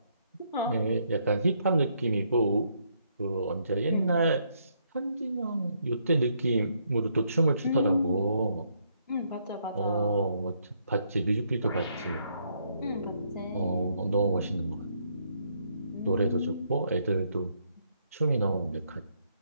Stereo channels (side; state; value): both; inverted; correlation -0.73